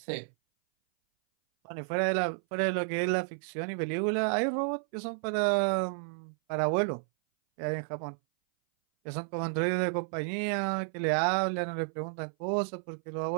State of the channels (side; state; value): left; silent; 57 dB below the other